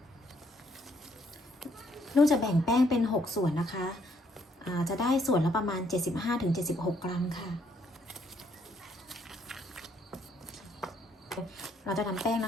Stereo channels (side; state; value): both; normal; correlation 0.69